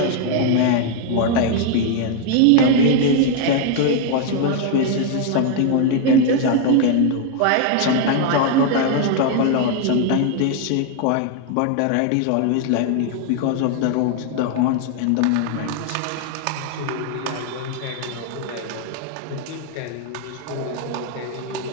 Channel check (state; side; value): different; both; correlation 0.00